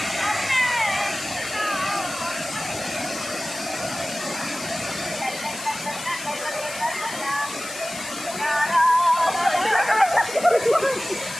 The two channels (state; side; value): noise; left; hiss, 11 dB below the sound